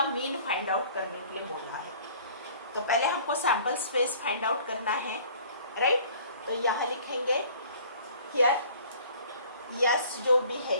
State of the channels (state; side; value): inverted; both; correlation -0.51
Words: मीन फाइंड आउट करने के लिए बोला है. तो पहले हमको सैंपल स्पेस फाइंड आउट करना है, राइट? तो यहाँ लिखेंगे हियर यस जो भी है